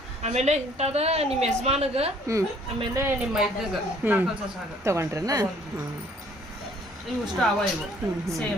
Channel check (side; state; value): both; normal; correlation 0.59